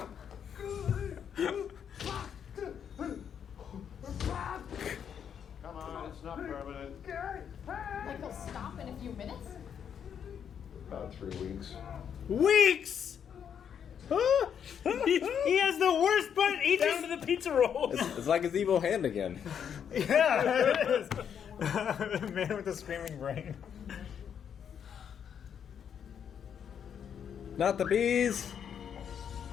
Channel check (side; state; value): right; quieter; 8.1 dB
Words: Come on, it's not permanent. Like he'll stop in a few minutes? About 3 weeks. Weeks! he has the worst butt. He down to the pizza rolls. It's like his evil hand again. Yeah, it is. The man with the screaming brain. Not the bees.